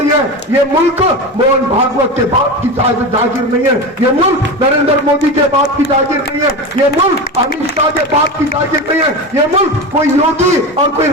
है। ये मुल्क मोहन भागवत के बाप की जागीर नहीं है, ये मुल्क नरेंद्र मोदी के बाप की जागीर नहीं है, ये मुल्क अमित शाह के बाप की जागीर नहीं है, ये मुल्क कोई योगी और कोई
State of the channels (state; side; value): normal; both; correlation 0.24